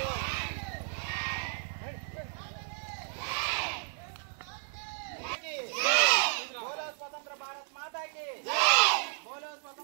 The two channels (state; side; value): silent; left; 56 dB below the other